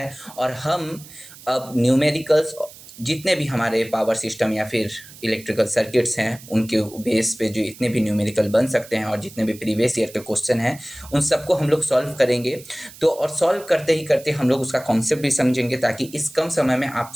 और हम अब न्यूमेरिकल्स जितने भी हमारे पावर सिस्टम या फिर इलेक्ट्रिकल सर्किट्स हैं उनके बेस पे जो इतने भी न्यूमेरिकल बन सकते हैं और जितने भी प्रीवियस ईयर के क्वेश्चन हैं उन सबको हम लोग सॉल्व करेंगे। तो और सॉल्व करते ही करते हम लोग उसका कॉन्सेप्ट भी समझेंगे ताकि इस कम समय में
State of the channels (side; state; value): right; noise; hiss, 19 dB below the sound